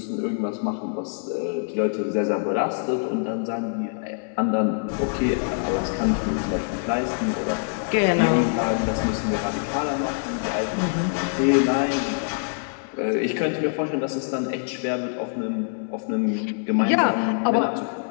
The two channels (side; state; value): right; silent; 62 dB below the other